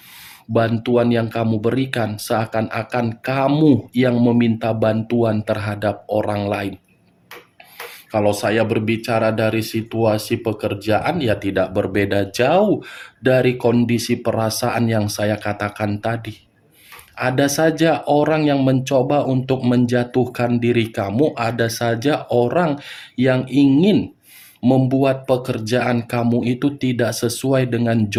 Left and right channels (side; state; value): both; identical; correlation 1.00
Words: bantuan yang kamu berikan seakan-akan kamu yang meminta bantuan terhadap orang lain. Kalau saya berbicara dari situasi pekerjaan, ya tidak berbeda jauh dari kondisi perasaan yang saya katakan tadi. Ada saja orang yang mencoba untuk menjatuhkan diri kamu, ada saja orang yang ingin membuat pekerjaan kamu itu tidak sesuai dengan